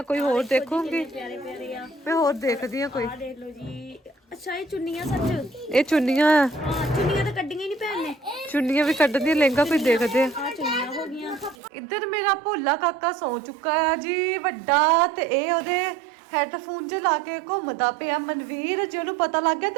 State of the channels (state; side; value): drops out; left; at 11.6 s